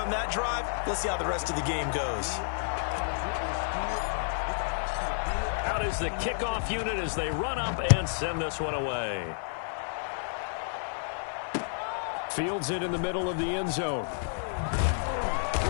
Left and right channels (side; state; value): right; silent; 58 dB below the other